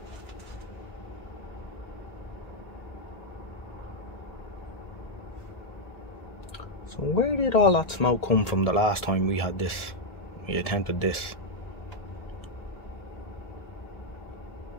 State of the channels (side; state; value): right; late; 1.7 ms